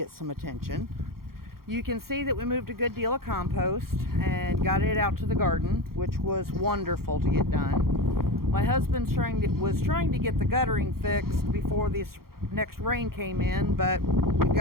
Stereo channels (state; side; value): late; left; 0.93 ms